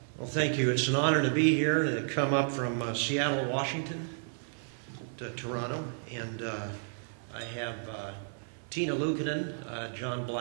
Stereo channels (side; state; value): left; silent; digital silence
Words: Well, thank you. It's an honor to be here and to come up from Seattle, Washington to Toronto. And I have Tina Luukkonen, John